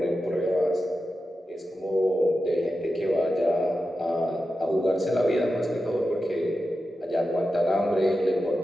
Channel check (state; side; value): normal; both; correlation 0.91